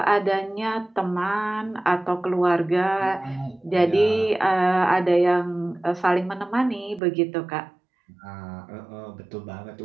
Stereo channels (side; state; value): left; drops out; at 7.0 s